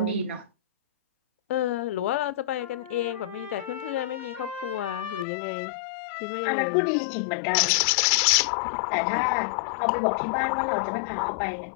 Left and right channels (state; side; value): drops out; right; at 5.2 s